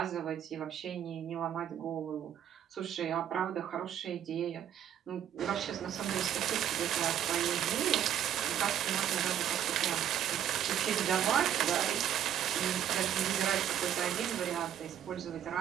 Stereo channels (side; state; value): left; quieter; 10.2 dB